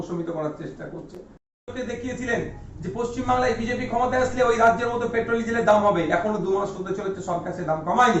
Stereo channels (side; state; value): both; identical; correlation 1.00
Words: করার চেষ্টা করছে। দেখিয়েছিলেন যে পশ্চিমবাংলায় বিজেপি ক্ষমতায় আসলে ওই রাজ্যের মধ্যে পেট্রোল ডিজেলের দাম হবে, এখনো 2 মাস হতে চলেছে, সরকার সে দাম